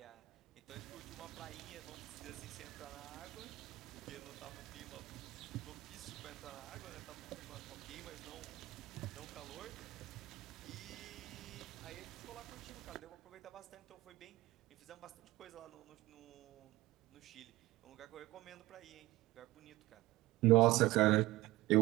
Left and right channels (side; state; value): left; quieter; 18.6 dB